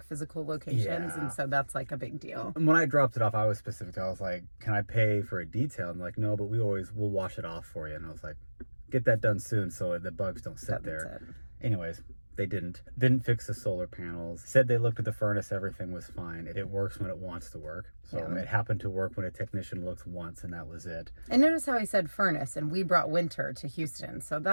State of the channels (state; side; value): inverted; both; correlation -1.00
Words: physical locations. Yeah. And so that's like a big deal. And when I dropped it off, I was specific. I was like, can I pay for a detail? And like, no, but we'll wash it off for you. And I was like, get that done soon so the bugs don't sit there. Anyways. They didn't fix the solar panels. Said they looked at the furnace, everything was fine. It works when it wants to work. So it happened to work when a technician looked once, and that was it. And notice how he said furnace, and we brought winter to Houston. So